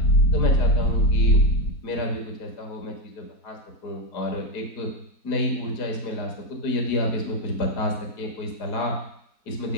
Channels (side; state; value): right; late; 4.2 ms